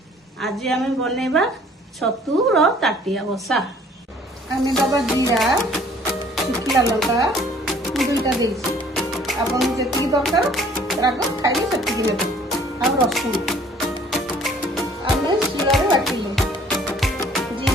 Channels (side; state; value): both; normal; correlation 0.56